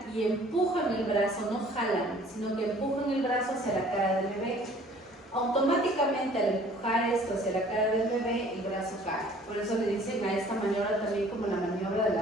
y empujan el brazo, no jalan, sino que empujan el brazo hacia la cara del bebé. Automáticamente al empujar esto hacia la cara del bebé, el brazo cae. Por eso le dicen a esta maniobra también como la maniobra de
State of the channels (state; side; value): normal; both; correlation 0.53